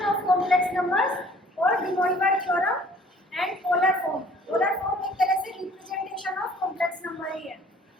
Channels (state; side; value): normal; both; correlation 0.54